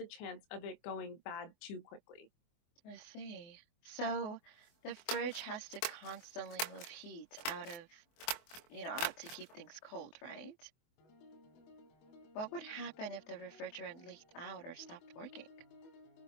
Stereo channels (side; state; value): right; late; 24 ms